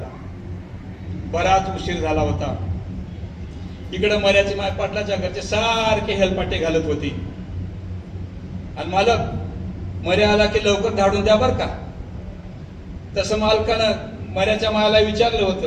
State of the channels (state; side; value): identical; both; correlation 1.00